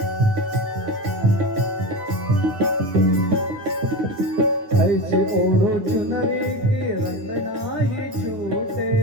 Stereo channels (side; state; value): left; late; 8.9 ms